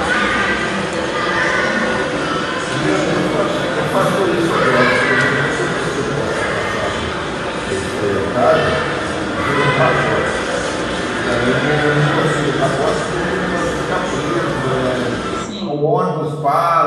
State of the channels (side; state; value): both; identical; correlation 1.00